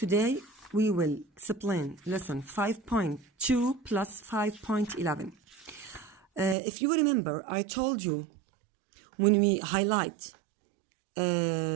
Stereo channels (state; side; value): drops out; left; at 6.6 s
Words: we will explain lesson 5.2 plus 5.11. If you remember, I told you when we highlight